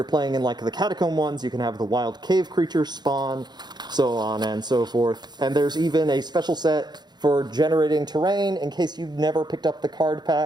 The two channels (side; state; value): left; late; 0.21 ms